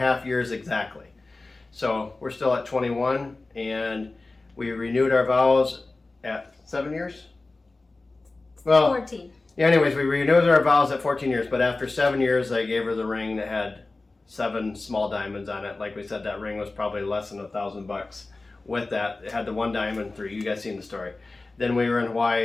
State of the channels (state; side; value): quieter; right; 3.3 dB